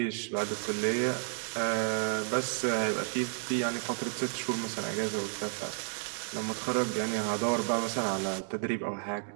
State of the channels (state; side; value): silent; left; digital silence